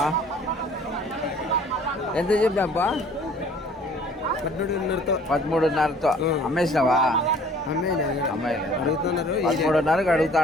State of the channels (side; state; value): both; normal; correlation 0.53